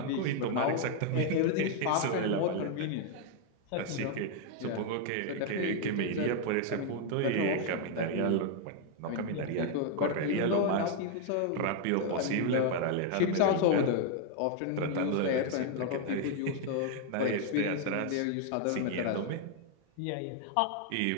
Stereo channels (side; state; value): both; different; correlation 0.00